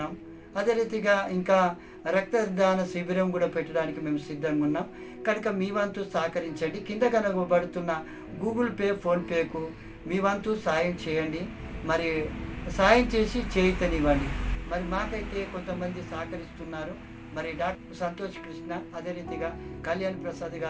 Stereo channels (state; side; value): identical; both; correlation 1.00